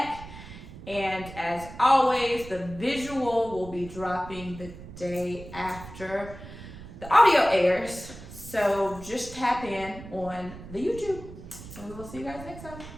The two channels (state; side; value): noise; right; rumble, 14 dB below the sound